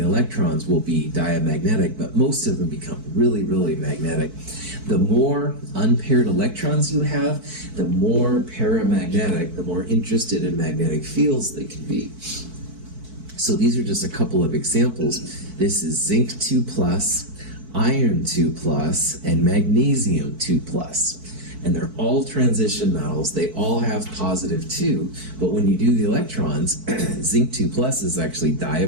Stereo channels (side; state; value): left; late; 4.6 ms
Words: electrons, will be diamagnetic, but most of them become really, really magnetic. The more unpaired electrons you have, the more paramagnetic, the more interested in magnetic fields they can be. So these are just a couple of examples. This is zinc 2+, iron 2+, and magnesium 2+. And they're all transition metals. They all have positive 2, but when you do the electrons, zinc 2+ is actually